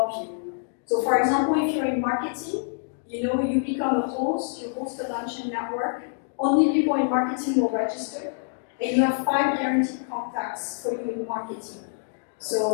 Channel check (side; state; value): right; silent; digital silence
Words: you. So for example, if you're in marketing, you become a host, you host a lunch and network, only people in marketing will register, and you have 5 guaranteed contacts for you in marketing.